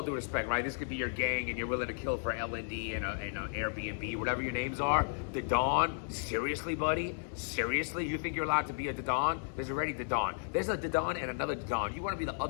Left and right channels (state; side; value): silent; right; digital silence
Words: due respect, right? This could be your gang and you're willing to kill for LND and an Airbnb, whatever your names are. The Dawn, seriously, buddy? Seriously? You think you're allowed to be a Dawn? There's already Dawn. There's a Dawn and another Dawn. You want to be the